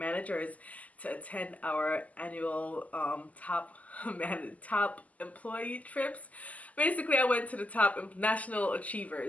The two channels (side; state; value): right; late; 0.074 ms